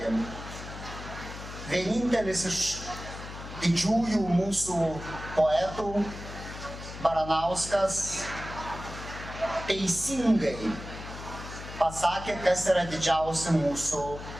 Vienintelis iš didžiųjų mūsų poetų, Baranauskas, teisingai pasakė, kas yra didžiausi mūsų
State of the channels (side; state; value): left; noise; hum, 11 dB below the sound